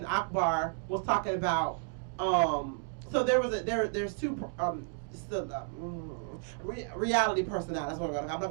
Akbar was talking about. So there's two reality personalities. That's what I'm not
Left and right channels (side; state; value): left; silent; 56 dB below the other